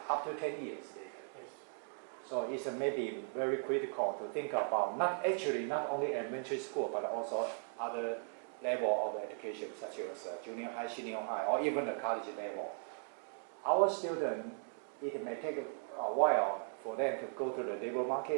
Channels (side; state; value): left; silent; 52 dB below the other